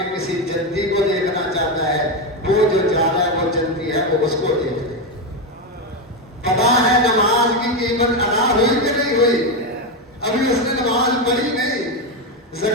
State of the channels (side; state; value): both; normal; correlation 0.10